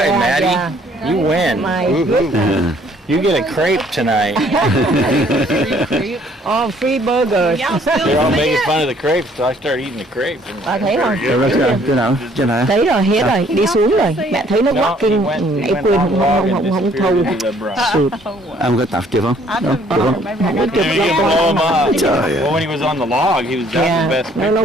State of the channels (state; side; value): normal; both; correlation 0.61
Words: Yeah, Maddie. yeah. You win. My goodness. You get a crepe tonight. Oh, free burgers. They're all making fun of the crepes, so I started eating the crepes. Bà thấy không? Chỗ nào? Trên này? Thấy rồi, hết rồi, đi xuống rồi. Mẹ thấy nó No, walking, he went nãy quên on the log and không disappeared thâu. into the brush. Sụt. Ông có tập chưa không? Được không? Nó chụp You ra can blow him up. Trời ơi. Well, when he was on the log, he was that's the Yeah, best. nó